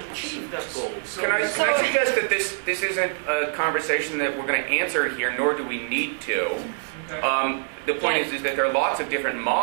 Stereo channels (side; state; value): left; silent; digital silence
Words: achieve that goal. Can I suggest that this isn't a conversation that we're going to answer here, nor do we need to. The point is that there are lots of different